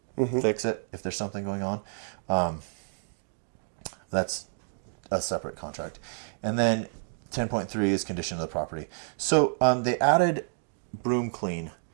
fix it if there's something going on. That's a separate contract. And then 10.3 is condition of the property. So they added broom clean,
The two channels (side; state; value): left; silent; 58 dB below the other